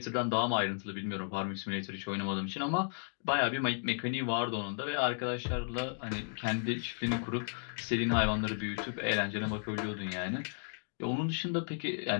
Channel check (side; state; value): right; silent; digital silence